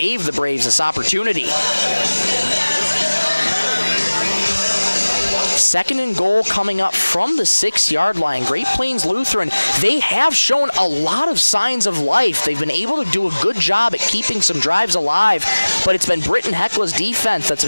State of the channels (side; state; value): both; inverted; correlation -1.00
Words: the Braves this opportunity. 2nd and goal coming up from the 6-yard line. Great Plains Lutheran, they have shown a lot of signs of life. They've been able to do a good job at keeping some drives alive, but it's been Britton-Hecla's defense that's